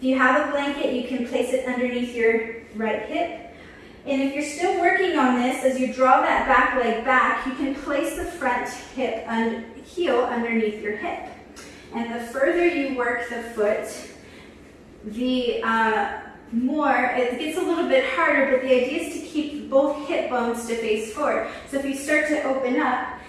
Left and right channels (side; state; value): both; identical; correlation 1.00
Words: you have a blanket, you can place it underneath your right hip. And if you're still working on this, as you draw that back leg back, you can place the front hip and heel underneath your hip. And the further you work the foot, the more, it gets a little bit harder, but the idea is to keep both hip bones to face forward. So if you start to open up,